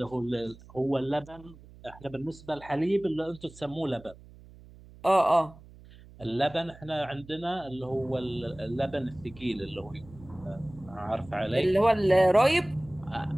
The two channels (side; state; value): right; noise; hum, 21 dB below the sound